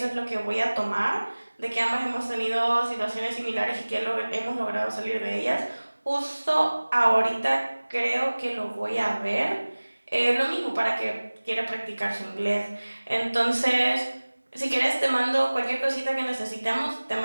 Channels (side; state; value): both; inverted; correlation -1.00